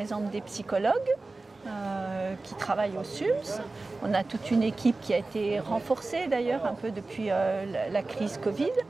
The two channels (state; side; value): quieter; left; 3.4 dB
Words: exemple des psychologues qui travaillent au SUMS. On a toute une équipe qui a été renforcée d'ailleurs un peu depuis la crise Covid.